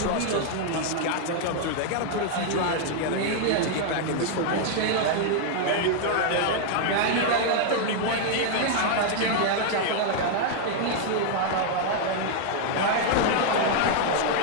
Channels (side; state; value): both; different; correlation 0.00